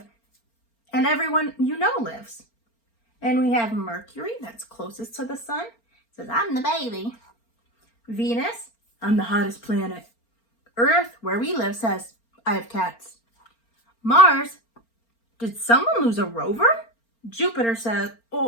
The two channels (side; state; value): right; late; 4.4 ms